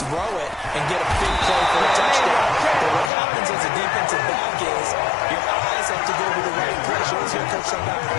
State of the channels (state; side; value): drops out; right; at 3.1 s